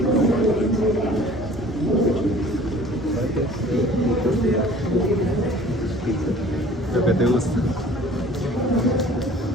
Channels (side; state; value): both; normal; correlation 0.49